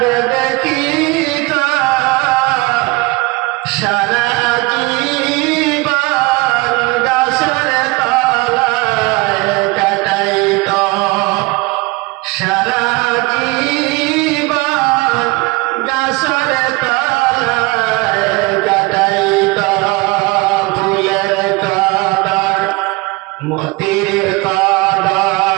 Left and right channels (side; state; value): left; quieter; 24.0 dB